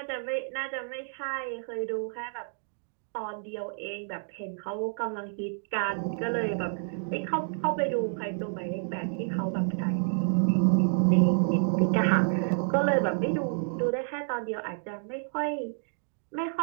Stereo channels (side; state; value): left; silent; digital silence